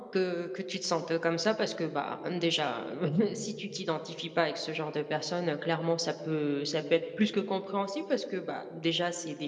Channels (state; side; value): identical; both; correlation 1.00